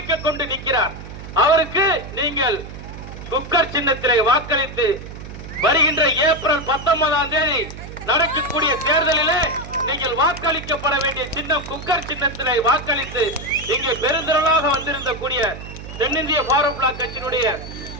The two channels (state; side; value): noise; right; hum, 12 dB below the sound